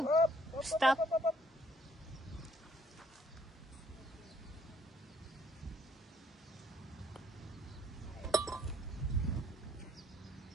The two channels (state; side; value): normal; both; correlation 0.66